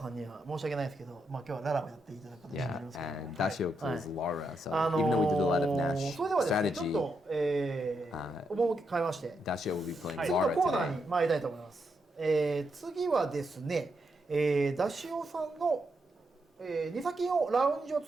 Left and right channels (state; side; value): normal; both; correlation 0.82